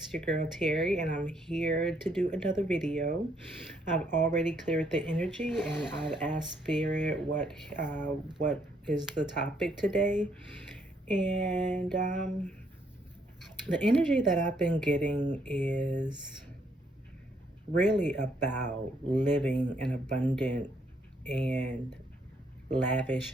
your girl Terry, and I'm here to do another video. I've already cleared the energy, and I've asked Spirit what is the topic today. And the energy that I've been getting is really about living an abundant and lavish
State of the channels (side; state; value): both; normal; correlation 0.71